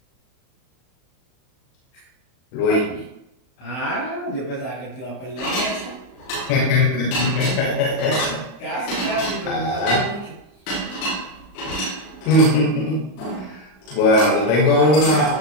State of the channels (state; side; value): late; right; 37 ms